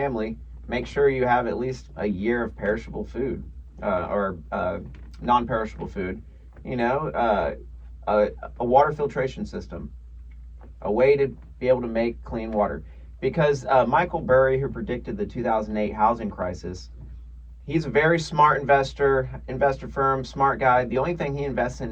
make sure you have at least a year of perishable food, or non-perishable food. A water filtration system, a way to be able to make clean water. Because Michael Burry, who predicted the 2008 housing crisis, he's a very smart investor firm, smart guy. The only thing he invests in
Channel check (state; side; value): identical; both; correlation 1.00